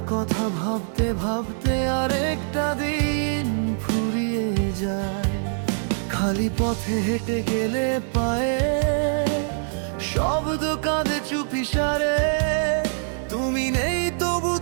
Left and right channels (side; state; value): left; silent; digital silence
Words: কথা ভাবতে ভাবতে আরেকটা দিন ফুরিয়ে যায়। খালি পথে হেঁটে গেলে পায়ে শব্দ কাঁদে চুপিসারে। তুমি নেই তবু